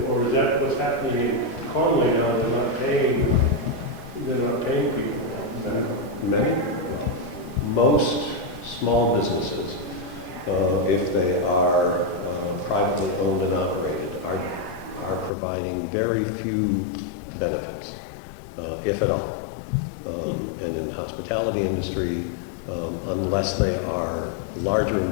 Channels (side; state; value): right; drops out; at 15.3 s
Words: or is that what's happening in Conway now? They're not paying people. Most small businesses, if they are privately owned and operated, are providing very few benefits, if at all. And in the hospitality industry, unless they are larger